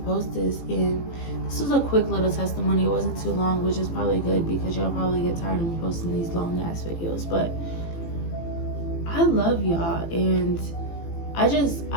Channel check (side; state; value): right; late; 18 ms